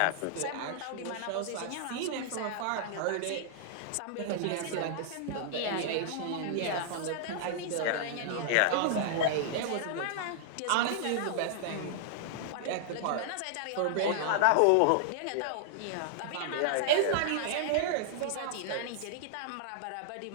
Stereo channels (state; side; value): different; both; correlation -0.01